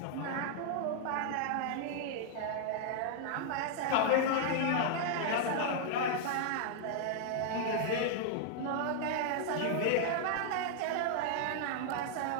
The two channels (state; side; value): different; both; correlation -0.01